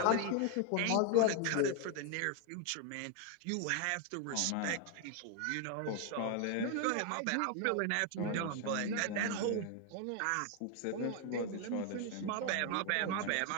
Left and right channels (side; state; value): both; different; correlation 0.01